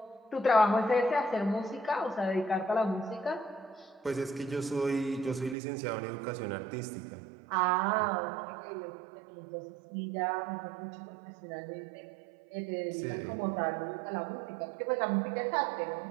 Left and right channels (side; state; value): left; drops out; at 5.6 s